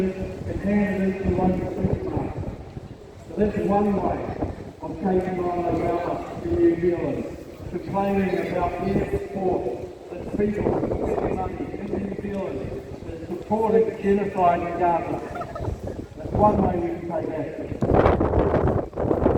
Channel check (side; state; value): both; identical; correlation 1.00